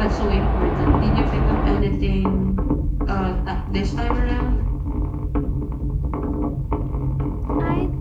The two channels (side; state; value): both; identical; correlation 1.00